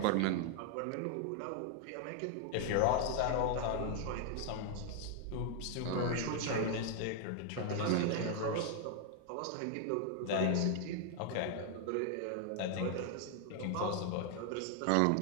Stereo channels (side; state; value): both; different; correlation 0.00